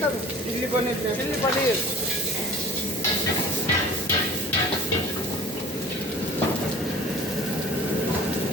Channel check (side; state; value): both; normal; correlation 0.45